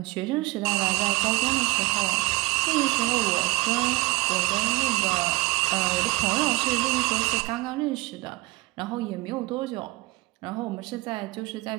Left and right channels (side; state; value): left; quieter; 21.8 dB